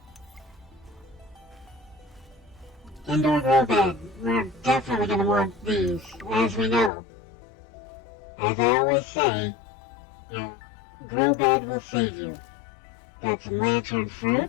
Indoor grow bed. We're definitely going to want these, as we know. As I always say, your grow bed will save you. Got some lantern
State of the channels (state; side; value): drops out; right; at 6.9 s